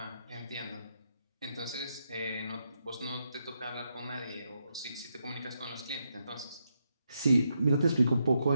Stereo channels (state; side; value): inverted; both; correlation -0.81